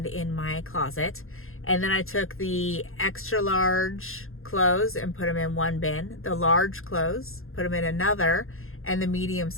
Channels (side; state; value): right; late; 0.61 ms